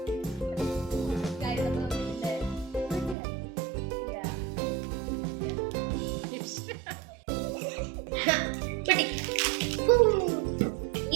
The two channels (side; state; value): left; drops out; at 3.2 s